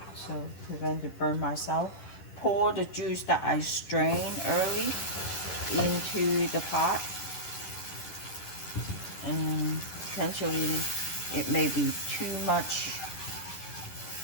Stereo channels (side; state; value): right; late; 10 ms